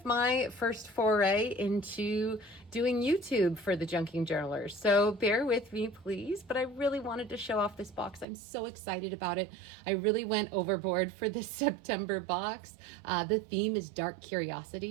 my first foray into doing YouTube for the Junking Journaler. So bear with me, please, but I really wanted to show off this box. I'm so excited about it. I really went overboard for this September box. The theme is Dark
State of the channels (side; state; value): left; drops out; at 8.2 s